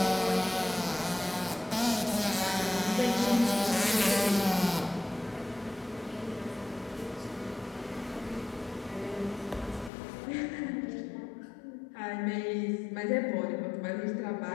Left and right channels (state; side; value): drops out; right; at 9.9 s